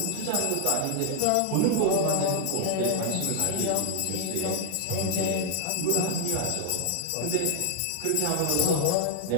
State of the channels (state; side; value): different; both; correlation 0.00